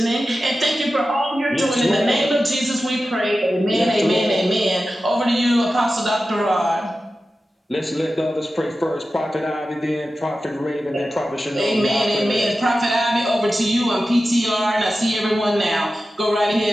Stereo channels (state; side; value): normal; both; correlation 0.93